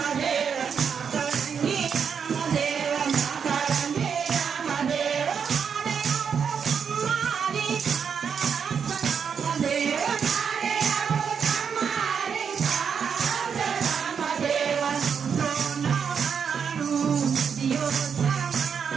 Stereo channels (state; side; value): quieter; left; 6.8 dB